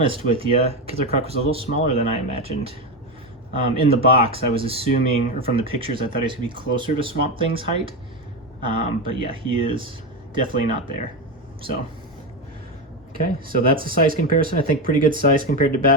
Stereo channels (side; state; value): both; normal; correlation 0.14